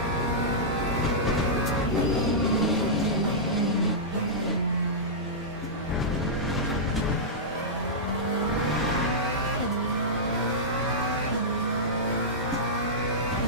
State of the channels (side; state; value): both; normal; correlation -0.13